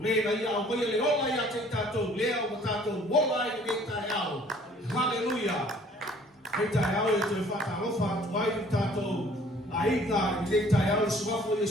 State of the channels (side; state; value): both; normal; correlation 0.55